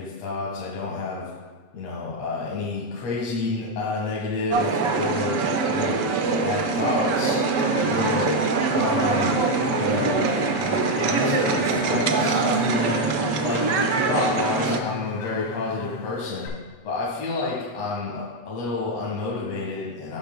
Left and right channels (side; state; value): right; late; 8.0 ms